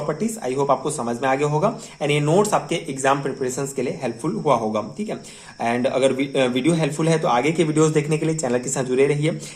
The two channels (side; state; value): both; identical; correlation 1.00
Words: I hope आपको समझ में आ गया होगा एंड ये नोट्स आपके एग्जाम प्रिपरेशंस के लिए हेल्पफुल हुआ होगा, ठीक है। एंड अगर वीडियो हेल्पफुल है तो आगे के वीडियोस देखने के लिए चैनल के साथ जुड़े रहिए।